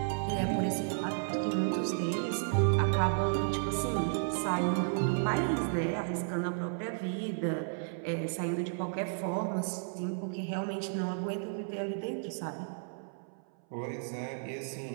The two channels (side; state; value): left; silent; 56 dB below the other